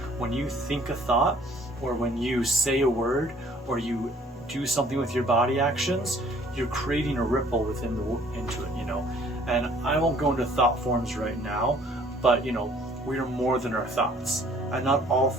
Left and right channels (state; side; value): normal; both; correlation 0.57